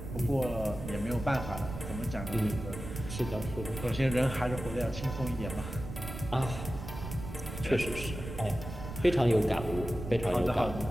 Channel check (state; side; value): noise; right; rumble, 9 dB below the sound